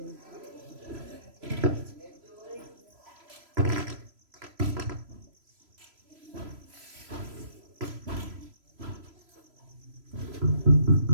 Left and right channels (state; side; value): late; left; 3.0 ms